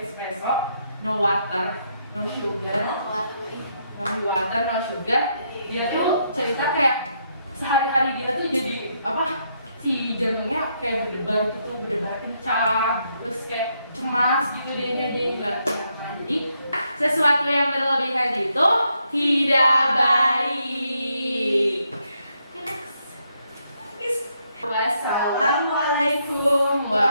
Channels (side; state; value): both; inverted; correlation -0.77